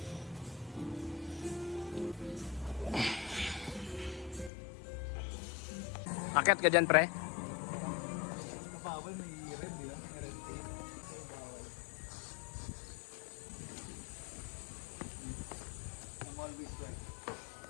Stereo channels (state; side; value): drops out; right; at 4.5 s